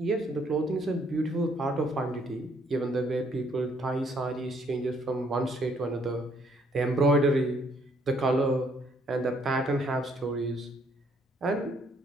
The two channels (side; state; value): both; normal; correlation 0.67